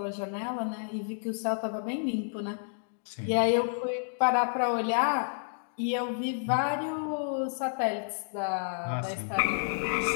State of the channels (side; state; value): right; silent; digital silence